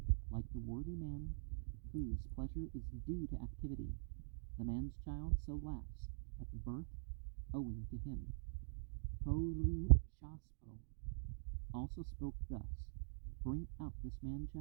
like the worthy man whose pleasure is due to activity, the man's child so laughs at the birth owing to him. Purushaspho also spoke thus: bring out this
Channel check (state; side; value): silent; left; digital silence